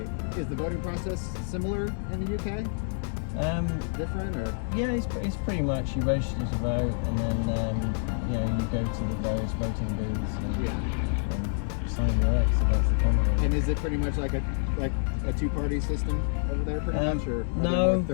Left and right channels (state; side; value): silent; right; 59 dB below the other